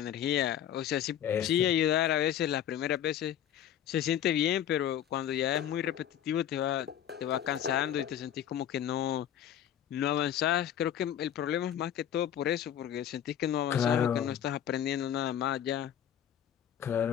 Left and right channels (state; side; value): quieter; right; 10.3 dB